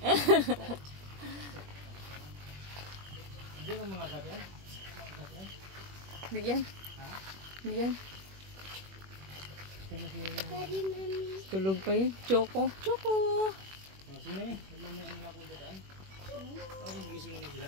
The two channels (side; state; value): left; late; 21 ms